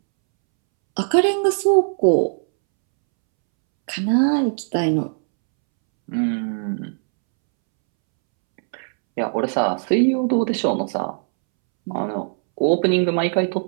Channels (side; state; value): left; silent; 66 dB below the other